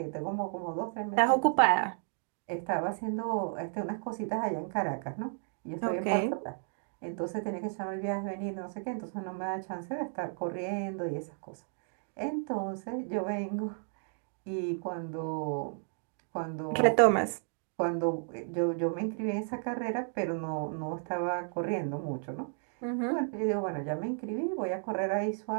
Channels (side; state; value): left; silent; 56 dB below the other